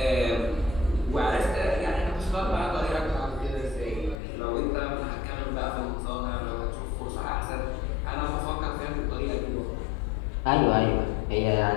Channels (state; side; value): drops out; right; at 4.2 s